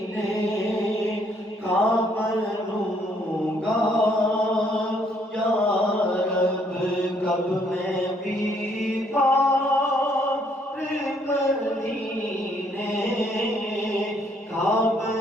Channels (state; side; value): normal; both; correlation 0.67